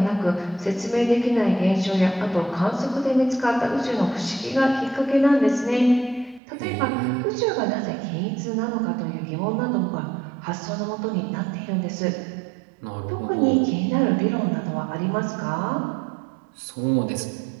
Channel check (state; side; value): drops out; left; at 6.4 s